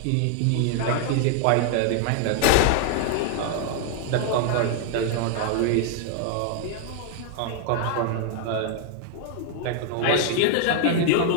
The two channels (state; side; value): different; both; correlation 0.00